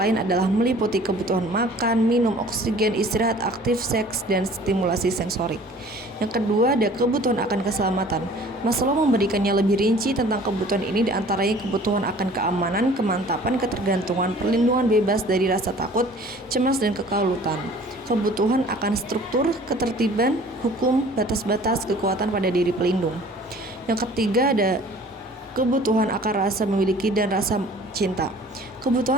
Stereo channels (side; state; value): both; normal; correlation 0.49